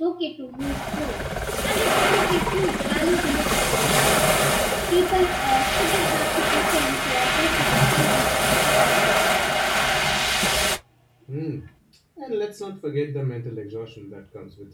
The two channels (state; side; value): identical; both; correlation 1.00